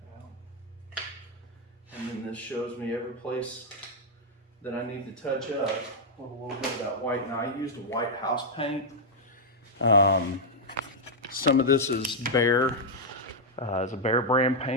out. And then this shows me every place that I need to touch up with a little bit of that white. Now I used a white house paint. Some of this is Behr. It's a Behr brand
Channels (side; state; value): both; normal; correlation -0.04